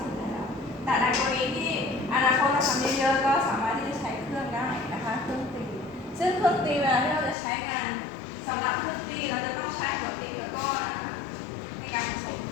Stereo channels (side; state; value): right; drops out; at 7.4 s